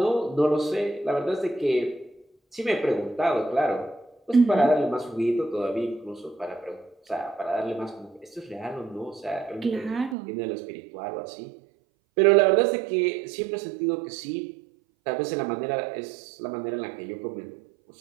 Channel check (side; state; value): left; drops out; at 10.2 s